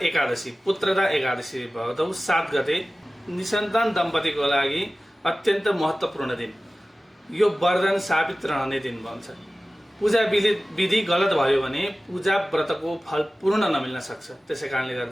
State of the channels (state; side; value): normal; both; correlation 0.96